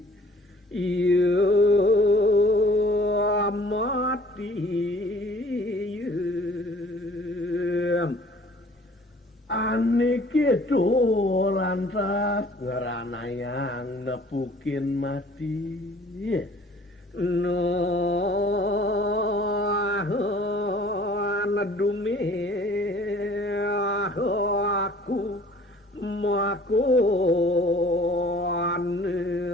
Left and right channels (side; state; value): both; normal; correlation 0.52